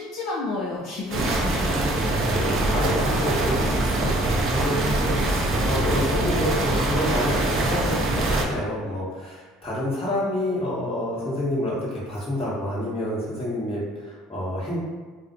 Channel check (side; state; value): both; normal; correlation 0.58